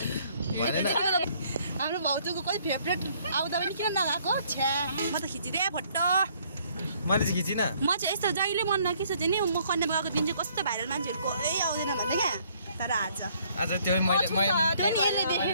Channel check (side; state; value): both; inverted; correlation -0.63